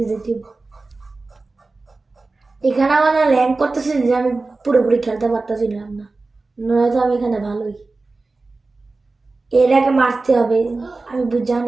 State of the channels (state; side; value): quieter; left; 3.6 dB